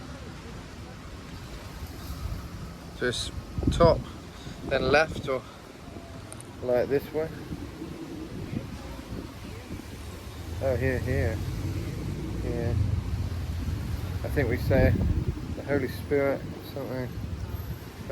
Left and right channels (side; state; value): both; identical; correlation 1.00